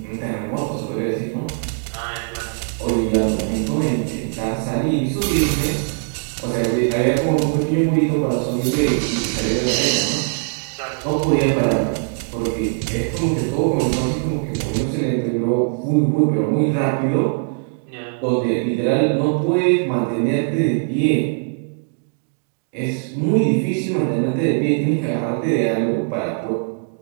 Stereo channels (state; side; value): silent; left; 65 dB below the other